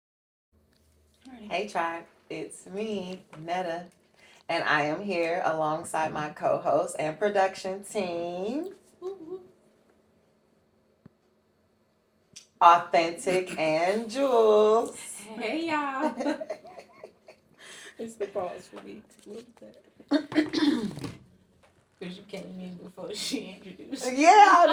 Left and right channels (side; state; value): both; identical; correlation 1.00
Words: Hey tribe, it's me, Netta, and I am here alongside my co-host and production team, Awthentikk and Jewelz. Hey y'all. It's the pause for me. Because you came in before she introduced. Yeah,